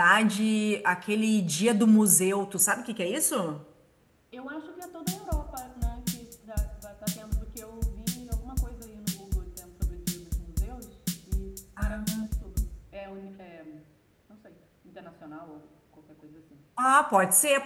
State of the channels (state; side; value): identical; both; correlation 1.00